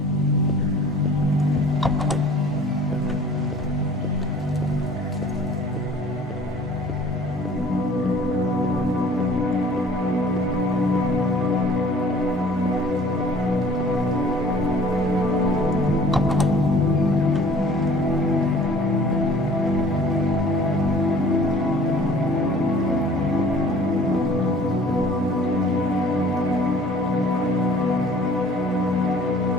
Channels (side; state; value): left; noise; hum, 26 dB below the sound